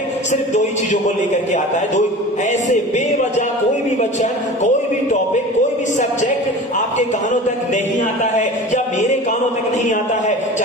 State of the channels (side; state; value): both; normal; correlation 0.37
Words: सिर्फ दो ही चीजों को लेकर के आता है। दो ऐसे बेवजह कोई भी वचन, कोई भी टॉपिक, कोई भी सब्जेक्ट आपके कानों तक नहीं आता है या मेरे कानों तक नहीं आता है,